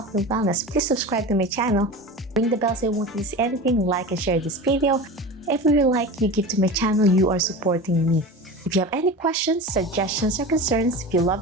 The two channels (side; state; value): both; normal; correlation 0.30